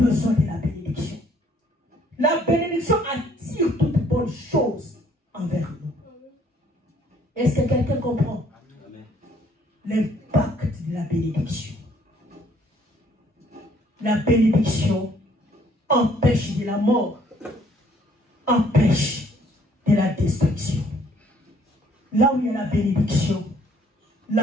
de la bénédiction. La bénédiction attire toute bonne chose envers nous. Est-ce que quelqu'un comprend? L'impact de la bénédiction. La bénédiction empêche de la mort, empêche de la destruction. Là où il y a la bénédiction,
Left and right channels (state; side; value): normal; both; correlation 0.62